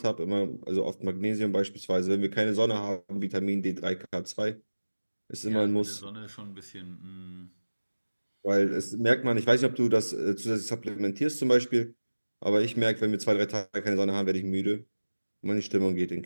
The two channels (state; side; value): inverted; both; correlation -1.00